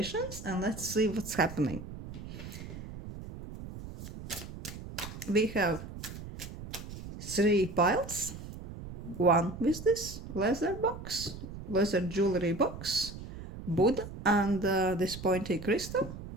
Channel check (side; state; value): right; noise; rumble, 11 dB below the sound